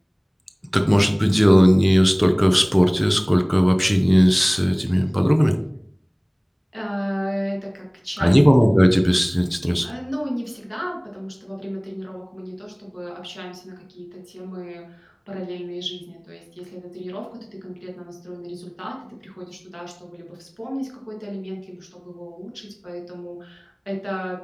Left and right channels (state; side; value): identical; both; correlation 1.00